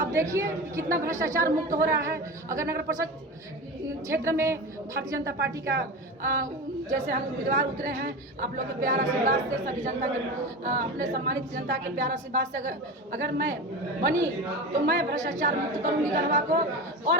देखिए कितना भ्रष्टाचार मुक्त हो रहा है। अगर नगर परिषद क्षेत्र में भारतीय जनता पार्टी का जैसे हम उम्मीदवार उतरे हैं, आप लोग के प्यार आशीर्वाद से, सभी जनता के अपने सम्मानित जनता के प्यार आशीर्वाद से अगर मैं बनी तो मैं भ्रष्टाचार मुक्त करूंगी गढ़वा को।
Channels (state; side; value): normal; both; correlation 0.27